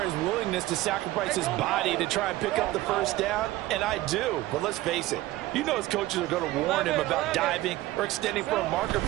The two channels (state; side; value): quieter; left; 17.0 dB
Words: his willingness to sacrifice his body to try and pick up the first down, and I do. But let's face it, you know his coaches are going to warn him about diving or extending for a marker